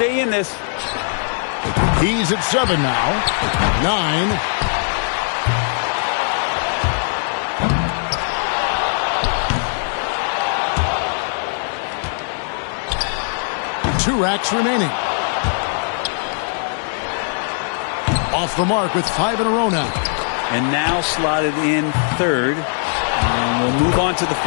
in this. He's at 7 now. 9. Two racks remaining. Off the mark with 5 in a row now. And now slotted in 3rd. And we'll move on to the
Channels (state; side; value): silent; right; digital silence